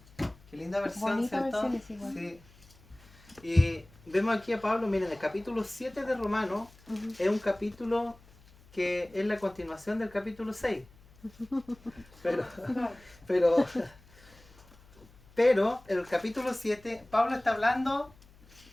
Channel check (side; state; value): left; noise; hum, 26 dB below the sound